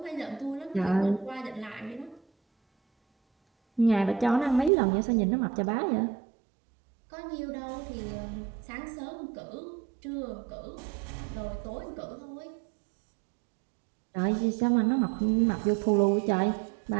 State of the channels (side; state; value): left; drops out; at 4.7 s